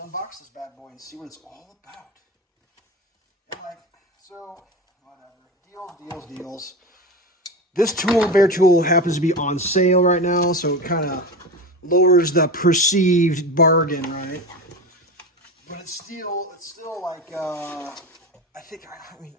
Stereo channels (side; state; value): both; normal; correlation 0.24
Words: this bad boy and see what it's all about. Anyway, so, whatever. Deals. This tool, bare tool, happens to be on sale right now, so it kind of lowers the perceived bargain, right? But it's still like, I mean,